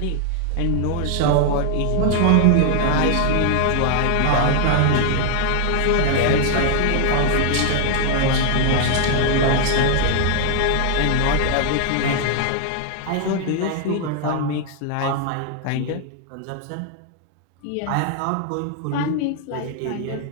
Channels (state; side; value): different; both; correlation 0.00